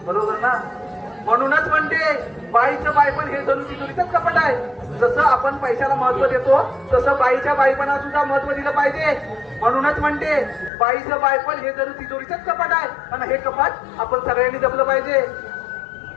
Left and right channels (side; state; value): right; drops out; at 10.7 s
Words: बरोबर ना? म्हणूनच म्हणते बाईचं बाईपण हे जणू तिजोरीचंच कपट आहे. जसं आपण पैशाला महत्व देतो, तसं बाईच्या बाईपणा सुद्धा महत्व दिलं पाहिजे. म्हणूनच म्हणते बाईचं बाईपण हे जणू तिजोरीचंच कपाट आहे, आणि हे कपाट आपण सगळ्यांनी जपलं पाहिजे.